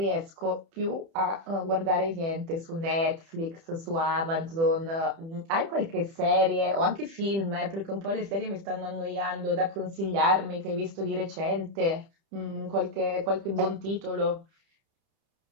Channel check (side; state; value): left; late; 30 ms